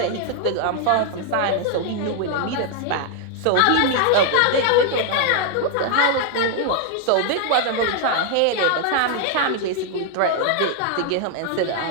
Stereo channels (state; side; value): different; both; correlation 0.00